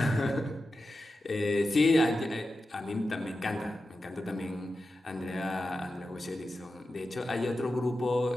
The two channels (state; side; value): normal; both; correlation 0.91